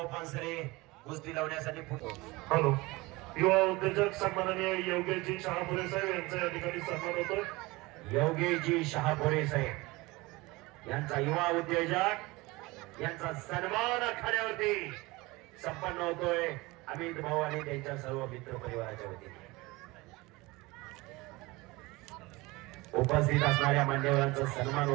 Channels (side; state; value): left; quieter; 22.3 dB